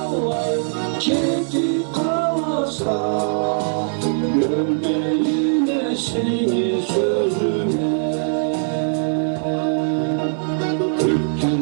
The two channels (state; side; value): silent; left; 59 dB below the other